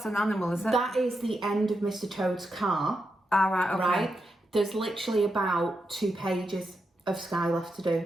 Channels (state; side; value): normal; both; correlation 0.85